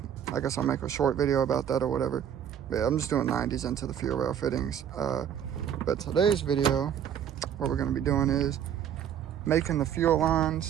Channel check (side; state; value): left; quieter; 9.2 dB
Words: guess I'll make a short video about that or whatever. But yeah, I'm just doing 90s into the fuel rail fittings. But today's video, what we're going to be doing is making the fuel